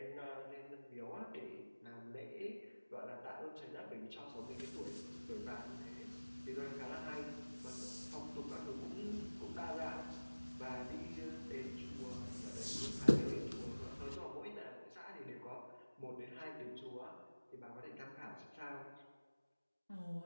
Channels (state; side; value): inverted; both; correlation -1.00